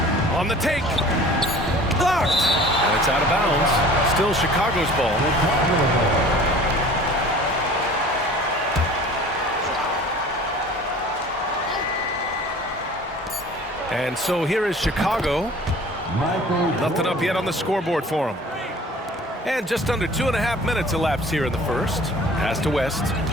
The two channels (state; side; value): normal; both; correlation 0.46